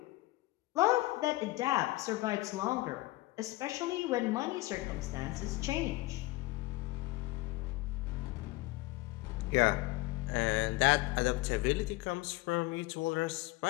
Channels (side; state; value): right; quieter; 19.9 dB